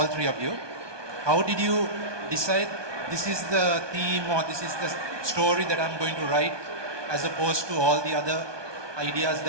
3 of you. How did you decide this is the theme or this is the story that I'm going to write, as opposed to all the other ideas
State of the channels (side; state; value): left; late; 1.2 ms